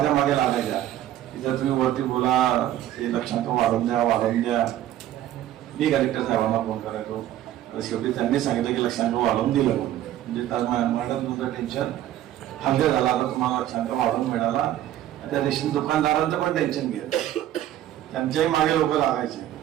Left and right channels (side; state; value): left; quieter; 12.7 dB